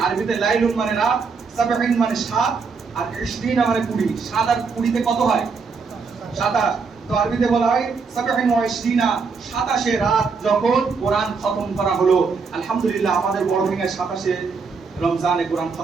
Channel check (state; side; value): quieter; left; 5.0 dB